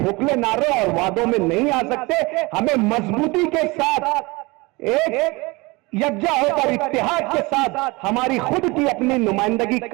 نعرے اور وعدوں میں نہیں آ سکتے۔ ہمیں مضبوطی کے ساتھ ایک یکجا ہو کر اتحاد کے ساتھ ہماری خود کی اپنی نمائندگی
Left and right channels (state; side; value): quieter; left; 24.4 dB